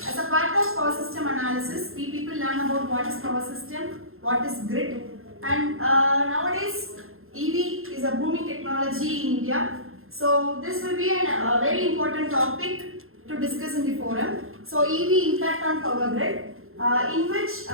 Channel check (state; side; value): late; left; 0.61 ms